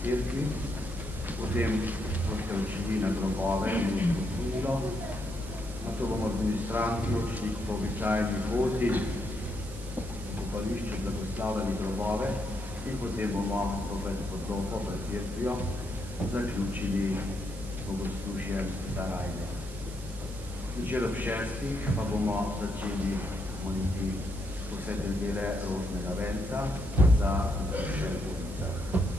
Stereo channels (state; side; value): noise; right; hiss, 18 dB below the sound